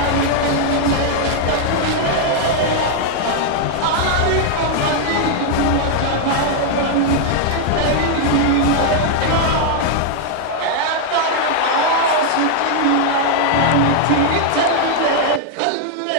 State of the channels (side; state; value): both; different; correlation 0.00